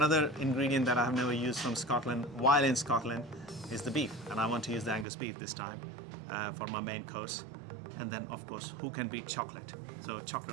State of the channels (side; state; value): left; drops out; at 5.1 s